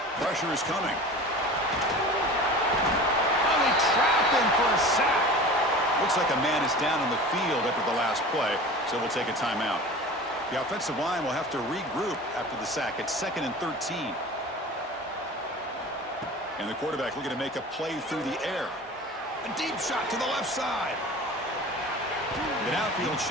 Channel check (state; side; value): normal; both; correlation 0.37